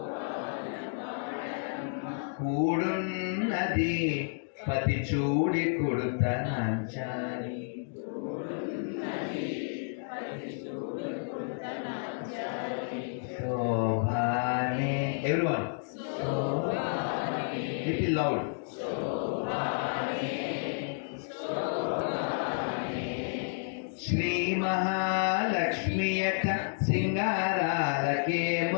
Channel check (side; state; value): right; silent; digital silence